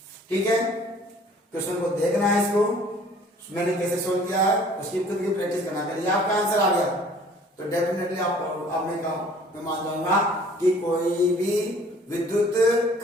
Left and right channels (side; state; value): both; normal; correlation 0.53